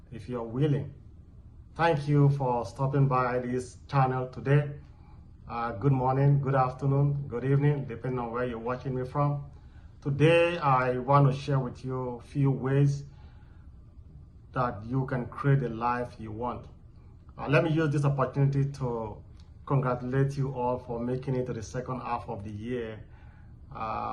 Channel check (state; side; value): identical; both; correlation 1.00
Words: if you're willing. Thank you for stopping by this channel today. Good morning, good afternoon, good evening, depending on where you're watching me from. Today, I want to share with you a few ways that you can create the life you want. Let me use this opportunity to congratulate you all for making it to the second half of the year.